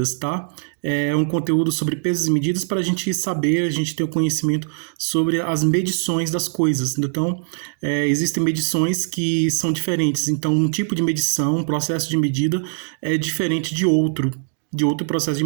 tá? É um conteúdo sobre pesos e medidas para a gente saber, a gente ter o conhecimento sobre as medições das coisas. Então, existem medições que são diferentes. Então, um tipo de medição, um processo de medida é diferente de outro processo de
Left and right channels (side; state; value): left; silent; digital silence